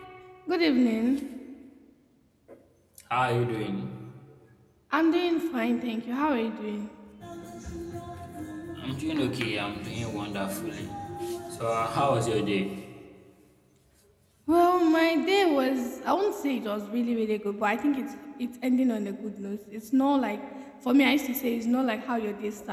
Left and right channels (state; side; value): identical; both; correlation 1.00